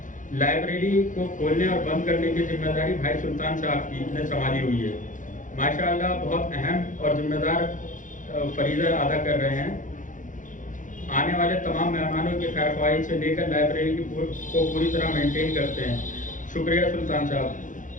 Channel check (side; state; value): right; late; 0.37 ms